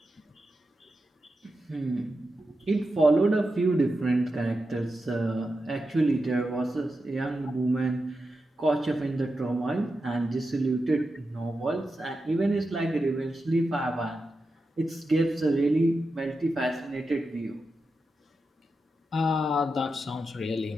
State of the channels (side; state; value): both; normal; correlation 0.89